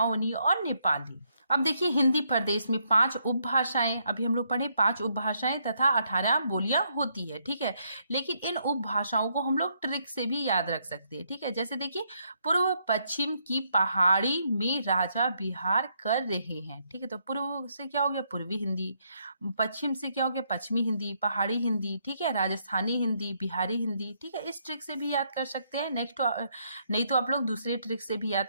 और नेपाली। अब देखिए हिंदी प्रदेश में 5 उपभाषाएं, अभी हम लोग पढ़े 5 उपभाषाएं तथा 18 बोलियां होती है। ठीक है, लेकिन इन उपभाषाओं को हम लोग ट्रिक से भी याद रख सकते हैं। ठीक है, जैसे देखिए पूर्व पश्चिम की पहाड़ी में राजा विहार कर रहे हैं। ठीक है, तो पूर्व से क्या हो गया, पूर्वी हिंदी। पश्चिम से क्या हो गया, पश्चिमी हिंदी, पहाड़ी हिंदी। ठीक है, राजस्थानी हिंदी, बिहारी हिंदी। ठीक है, इस ट्रिक से भी याद कर सकते हैं। नेक्स्ट नहीं तो आप लोग दूसरे ट्रिक से भी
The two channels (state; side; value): inverted; both; correlation -0.74